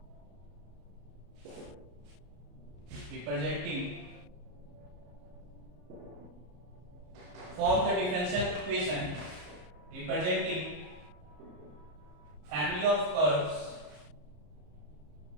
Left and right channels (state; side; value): late; left; 33 ms